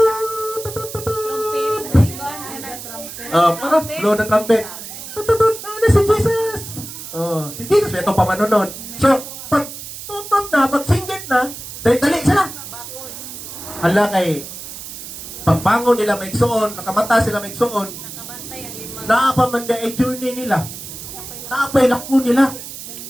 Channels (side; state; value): right; noise; hiss, 11 dB below the sound